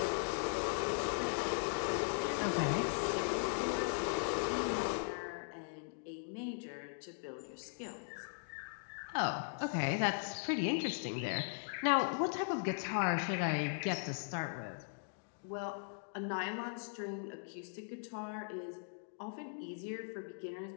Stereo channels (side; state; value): right; silent; digital silence